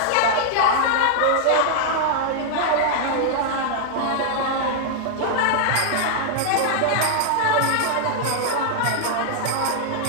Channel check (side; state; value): both; different; correlation -0.01